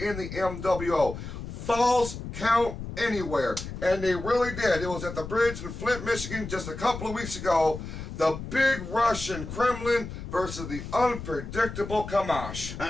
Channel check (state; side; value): noise; left; rumble, 9 dB below the sound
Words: the MWO. Falls count anywhere, and they really did. It was at the bridge in Flint, Michigan just a couple of weeks ago. The big Russian Kremlin versus the unpredictable Kamash.